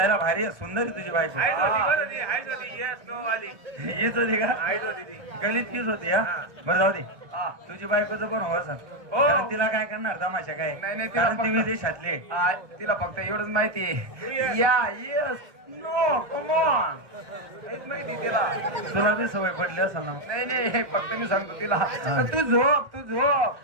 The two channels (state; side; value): late; left; 1.1 ms